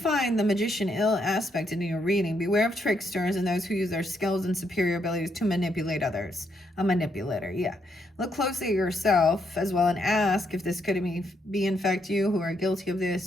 the magician ill aspect in your reading, beware of tricksters and those who use their skills and superior abilities to manipulate others. A manipulator, yeah. Look closely at yourself as well and ask if this could be in fact you who are guilty of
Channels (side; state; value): both; normal; correlation 0.76